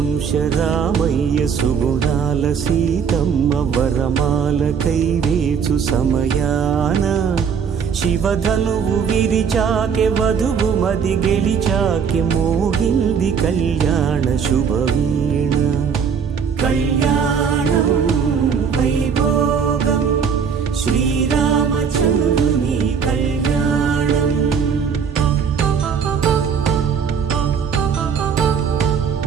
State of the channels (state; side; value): quieter; left; 6.7 dB